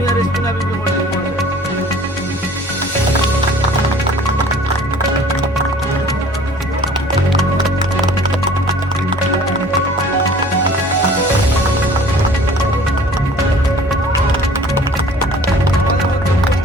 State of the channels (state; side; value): normal; both; correlation 0.49